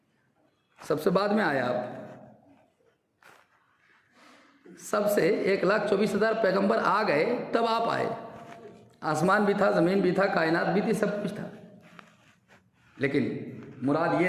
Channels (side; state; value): both; identical; correlation 1.00